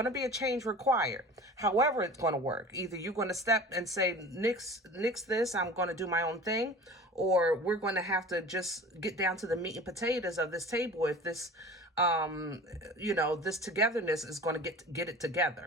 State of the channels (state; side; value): normal; both; correlation 0.39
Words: to be a change required. However it's going to work, either you're going to step and say, nix this, I'm going to do my own thing, or we're going to have to just get down to the meat and potatoes of this table. If this this togetherness is going to get it